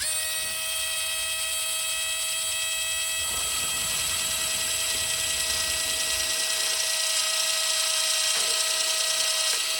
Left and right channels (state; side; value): identical; both; correlation 1.00